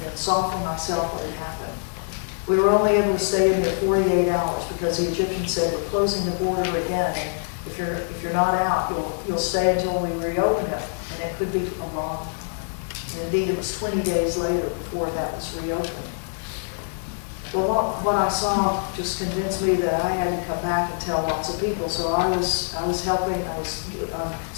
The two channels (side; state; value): right; silent; digital silence